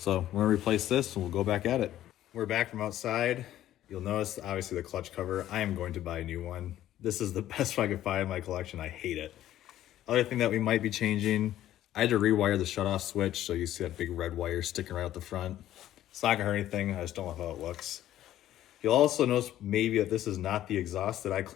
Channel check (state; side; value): quieter; right; 12.9 dB